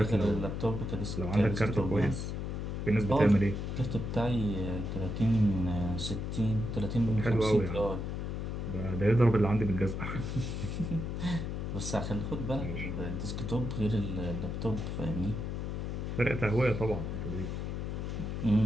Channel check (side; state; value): left; noise; hum, 3 dB below the sound